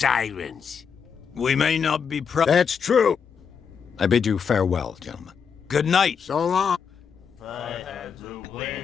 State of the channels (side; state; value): right; quieter; 6.6 dB